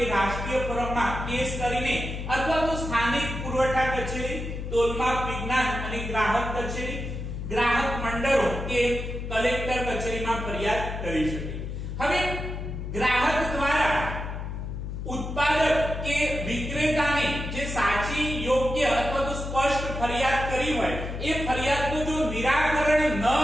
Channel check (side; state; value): left; noise; hum, 6 dB below the sound